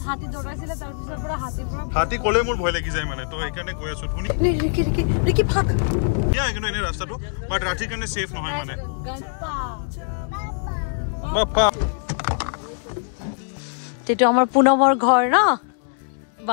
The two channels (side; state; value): right; silent; digital silence